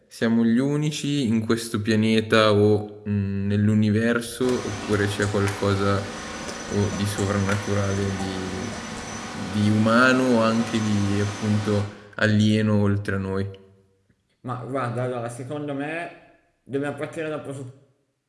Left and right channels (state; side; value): identical; both; correlation 1.00